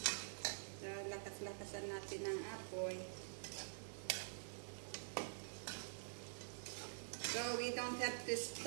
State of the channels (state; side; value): silent; left; digital silence